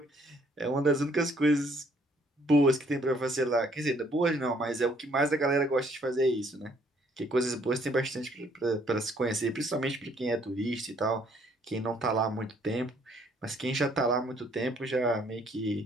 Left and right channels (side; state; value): both; normal; correlation 0.64